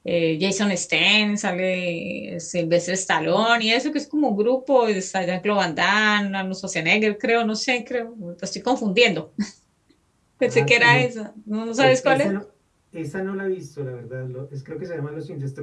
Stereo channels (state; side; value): identical; both; correlation 1.00